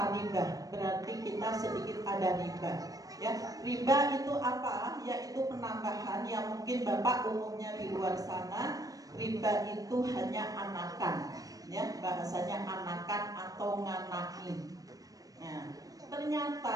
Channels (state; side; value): late; left; 0.18 ms